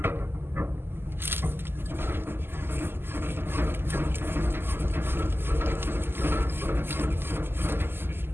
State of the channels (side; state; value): left; late; 0.11 ms